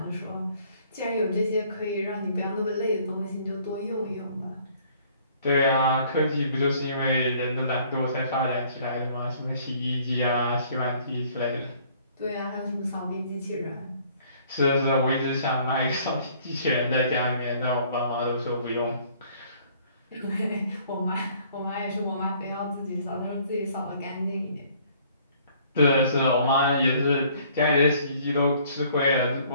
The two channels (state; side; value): inverted; both; correlation -0.59